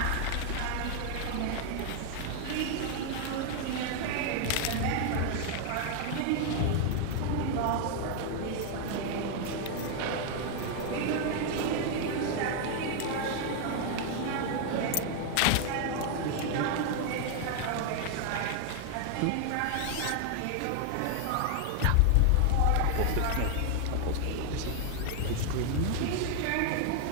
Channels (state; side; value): different; both; correlation 0.00